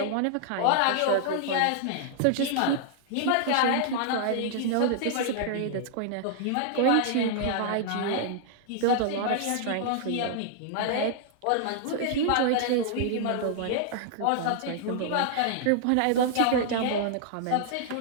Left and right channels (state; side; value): different; both; correlation -0.01